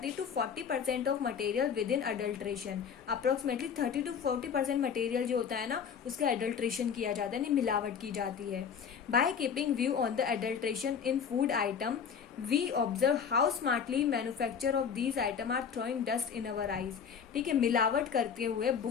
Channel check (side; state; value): right; quieter; 7.0 dB